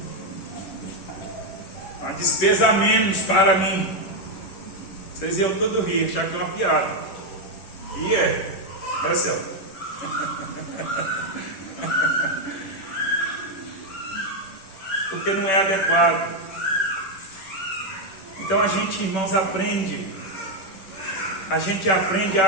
Uma despesa a menos para mim. Vocês iam todo rir, achar que é uma piada. E é Celso. Porque não é adequado. Então a gente, irmãos, aprende. A gente aprende a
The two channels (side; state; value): right; late; 10 ms